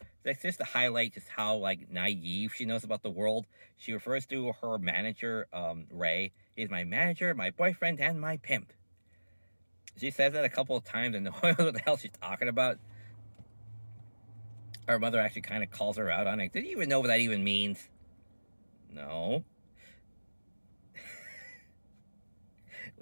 That's just to highlight just how like naive she knows about the world. She refers to her manager, Ray. He's my manager, my boyfriend, and my pimp. She says that a couple of times and no one knows what the hell she's talking about. Her mother actually kind of calls her out on it. Did you even know what that even means? No.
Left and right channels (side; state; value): both; inverted; correlation -1.00